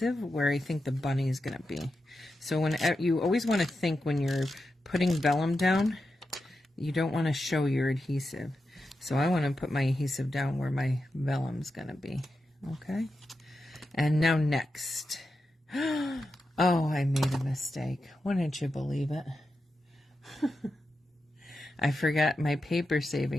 where I think the bunny is going to be. So when you always want to think when you're putting vellum down, you don't want to show your adhesive. So I want to put my adhesive down where my vellum's going to be. Okay? And now next. Oh, I made a mistake. Wouldn't you believe it? I forgot my paper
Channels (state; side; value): normal; both; correlation 0.89